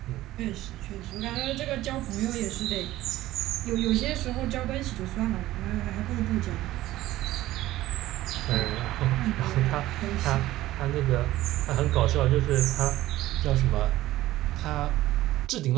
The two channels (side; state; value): left; quieter; 15.8 dB